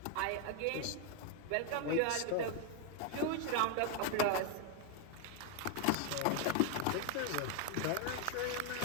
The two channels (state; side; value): different; both; correlation 0.01